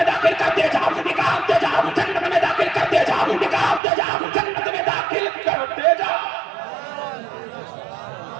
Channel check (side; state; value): left; drops out; at 3.8 s